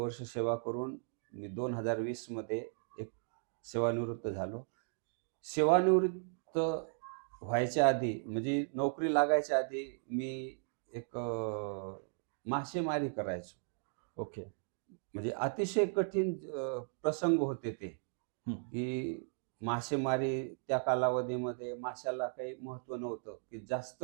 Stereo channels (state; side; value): silent; left; digital silence